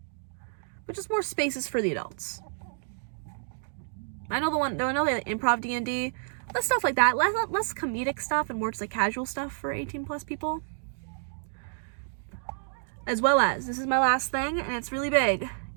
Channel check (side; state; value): left; silent; digital silence